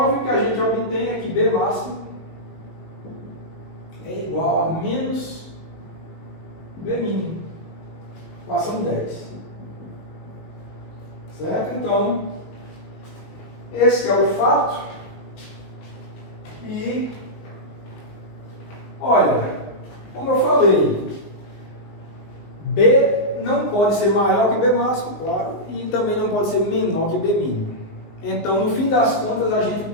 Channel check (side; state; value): right; late; 19 ms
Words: o que a gente obtém é que B máximo é igual a menos B mínimo. Equação 10. Certo? Então, esse é o fato. E, olha, como eu falei, B não pode ser maior que B máximo, claro, e também não pode ser menor que B mínimo. Então, no fim das contas, a gente